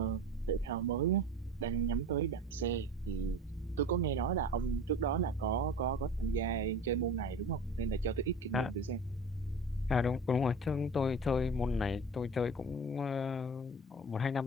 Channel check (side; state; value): both; normal; correlation 0.36